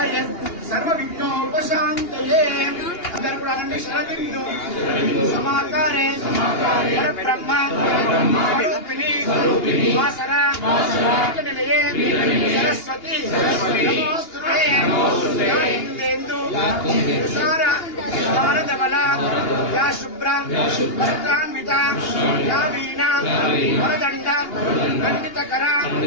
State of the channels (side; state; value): right; late; 2.8 ms